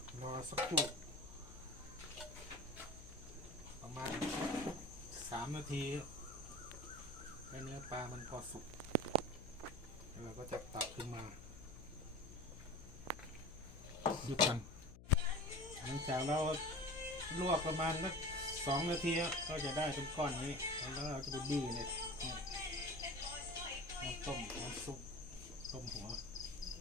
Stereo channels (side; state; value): left; noise; hum, 16 dB below the sound